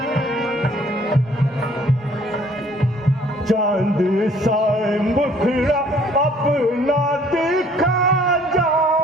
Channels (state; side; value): normal; both; correlation 0.58